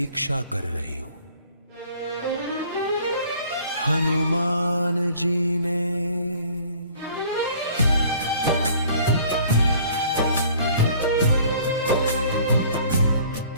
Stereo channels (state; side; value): inverted; both; correlation -0.53